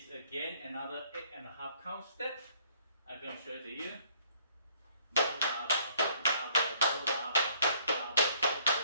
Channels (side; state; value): both; inverted; correlation -0.62